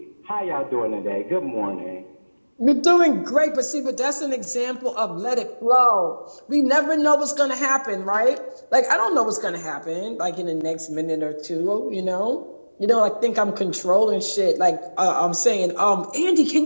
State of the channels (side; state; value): both; inverted; correlation -1.00